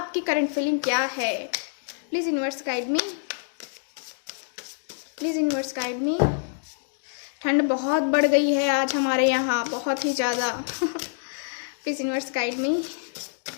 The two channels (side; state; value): right; silent; digital silence